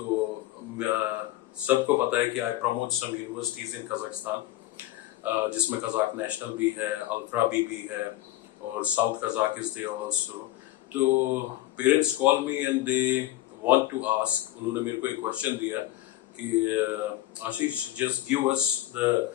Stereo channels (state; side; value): quieter; right; 15.3 dB